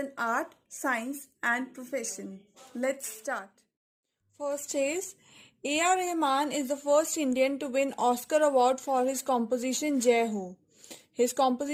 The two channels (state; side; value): identical; both; correlation 1.00